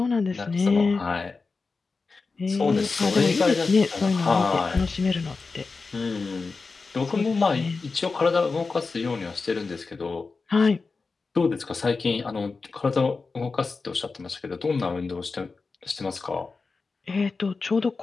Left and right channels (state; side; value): quieter; right; 4.2 dB